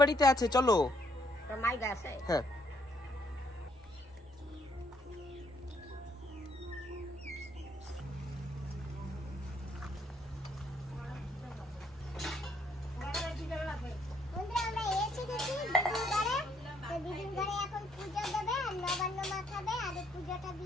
আছে, চলো। তোর মাই গেছে? হ্যাঁ। বন্ধুরা আমরা এসে গেছি দিদির ঘরে। তো দিদির ঘরে এখন পূজা দেবে আর নবান্ন মাখাবে, আর এই পূজাটা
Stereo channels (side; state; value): both; normal; correlation 0.70